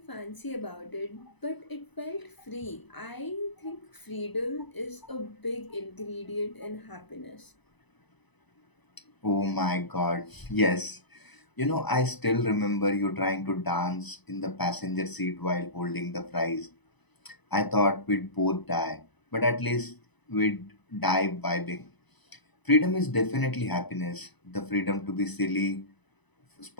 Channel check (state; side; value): late; right; 1.0 ms